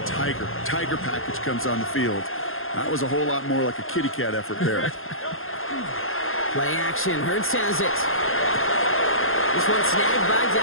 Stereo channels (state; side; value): late; right; 0.60 ms